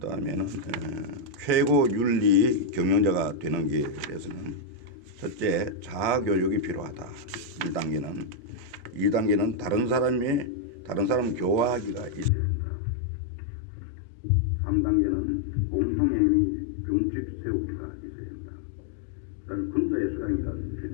다음에는 최고 윤리 경영자가 되는 길에서는 첫째, 자아교육이 필요하다. 2단계는 다른 사람 교화하기가 있어야 한다. 3단계는 공통행위 준칙 세우기가 있어야 한다. 그 다음에 군자의 소양이라는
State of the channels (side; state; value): right; drops out; at 12.3 s